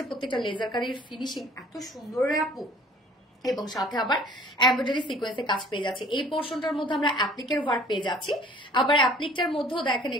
প্রত্যেকটা লেজার কারির ফিনিশিং এত সুন্দর রে আপু, এবং সাথে আবার এমব্রয়ডারি সিকোয়েন্সে কাজ পেয়ে যাচ্ছে। এই পোর্শনটার মধ্যে আমরা অ্যাপ্লিকের ওয়ার্ক পেয়ে যাচ্ছি, আবার অ্যাপ্লিকটার মধ্যেও দেখেন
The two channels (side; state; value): both; normal; correlation 0.51